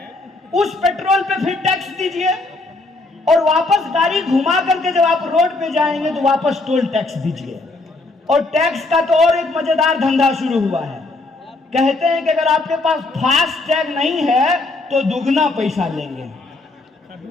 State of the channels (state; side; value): quieter; right; 3.2 dB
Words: उस पेट्रोल पे फिर टैक्स दीजिए, और वापस गाड़ी घुमा करके जब आप रोड पे जाएंगे तो वापस टोल टैक्स दीजिए। और टैक्स का तो और एक मजेदार धंधा शुरू हुआ है। कहते हैं कि अगर आपके पास फास्ट टैग नहीं है तो दुगना पैसा लेंगे।